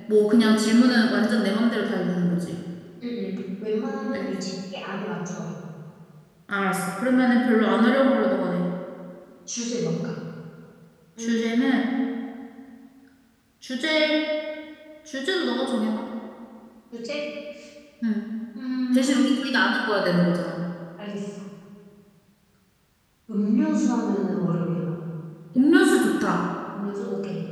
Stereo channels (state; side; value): identical; both; correlation 1.00